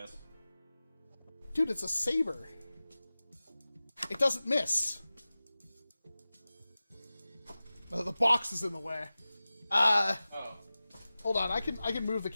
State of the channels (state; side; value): inverted; both; correlation -0.97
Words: Dude, it's a saber. It doesn't miss. Oh, the box is in the way. Oh. Hold on. I can move the